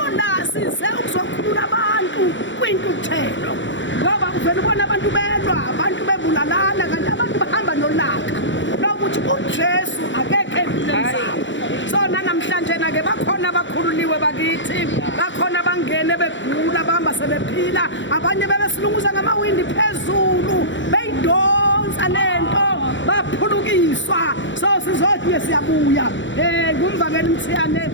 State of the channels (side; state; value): right; late; 0.54 ms